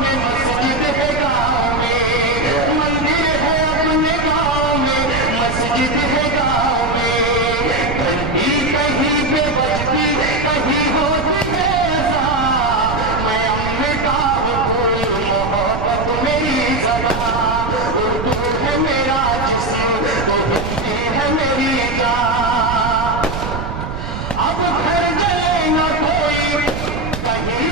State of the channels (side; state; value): right; noise; rumble, 6 dB below the sound